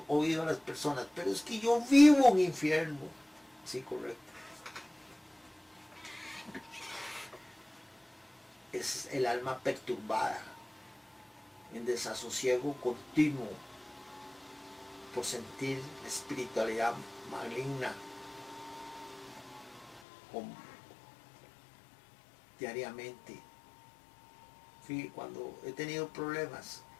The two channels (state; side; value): drops out; right; at 20.0 s